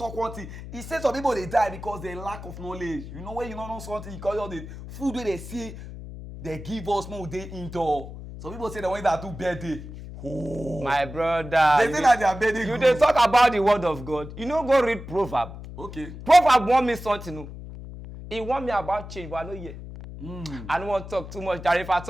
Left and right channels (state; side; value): noise; left; hum, 12 dB below the sound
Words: one thing. He said some people they die because they lack of knowledge. You know when you don't know something, because all the food where they see, they give us more day indoor. Some people say the ones that do birthday. Oh. My brother. They say that they are birthday. You dey talk about the word of God. You no go read proverb. Okay. Proverb want me something. No. He want me about change, but I no hear. I don't want to talk too much. Jare, if I